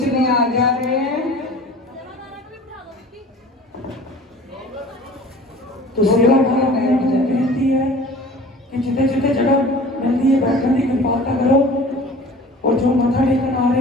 में आ जा रहे हैं तो सेवा बेनती है कि जिते जिते जगह मिलती है बैठने की कृपालता करो और जो मथा टेकन आ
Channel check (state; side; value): normal; both; correlation 0.43